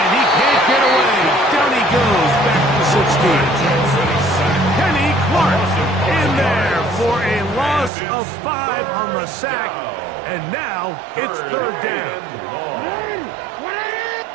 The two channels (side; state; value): left; drops out; at 7.9 s